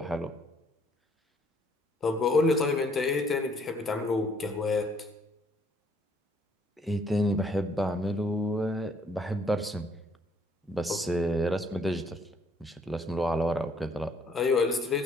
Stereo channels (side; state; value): both; normal; correlation 0.65